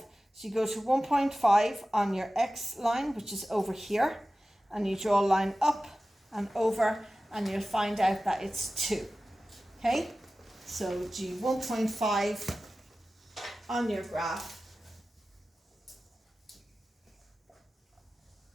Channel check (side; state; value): both; normal; correlation 0.95